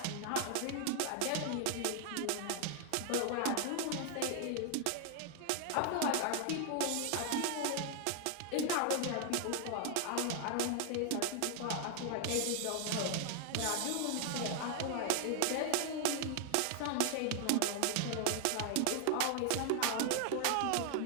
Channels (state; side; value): different; both; correlation 0.00